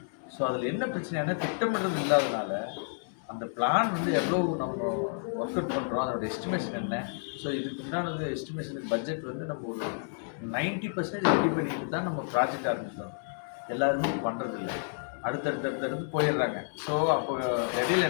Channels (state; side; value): silent; right; 58 dB below the other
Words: ஸோ அதில் என்ன பிரச்சனைனா திட்டமிடுறது இல்லாதனால அந்த பிளான் எவ்வளோ நம்ம ஒர்க் அவுட் பண்ணுறோம், அதோட எஸ்டிமேஷன் என்ன. ஸோ இதுக்கு உண்டானது எஸ்டிமேஷனுக்கு பட்ஜெட் நம்ம ஒரு 90% ரெடி பண்ணிட்டு தான் நம்ம ப்ராஜெக்ட் ஆரம்பிக்கிறோம். எல்லாருமே பண்ணுறதில்ல, அடுத்தடுத்து போயிடுறாங்க. ஸோ அப்போ இடையில